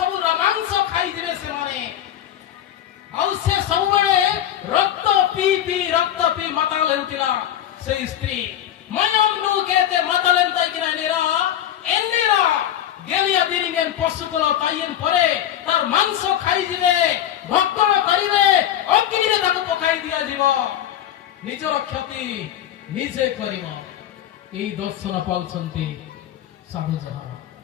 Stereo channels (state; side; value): quieter; right; 11.2 dB